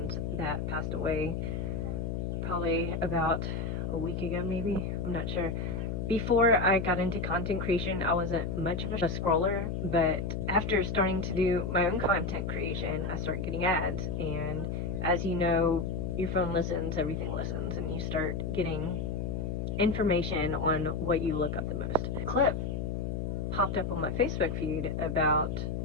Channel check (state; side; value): noise; left; hum, 2 dB below the sound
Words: that passed away probably about a week ago, maybe. I'm not sure. Before I got into content creation, I wasn't much of a scroller, but after starting to do my own content creation, I started getting ads, and as you know, your phone listens, everything listens, and you start getting information on what you look up the most. A clip popped up on my Facebook feed about